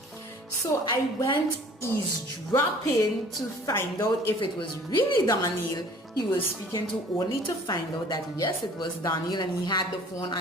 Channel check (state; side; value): normal; both; correlation 0.51